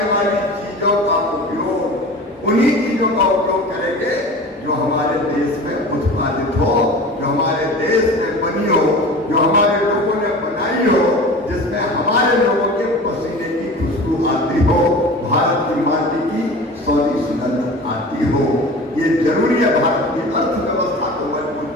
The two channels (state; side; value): normal; both; correlation 0.37